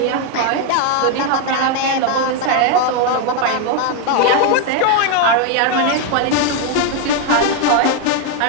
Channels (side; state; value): both; different; correlation 0.01